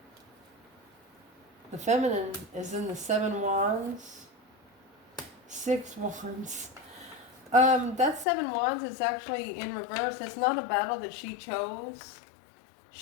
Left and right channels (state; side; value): drops out; right; at 8.2 s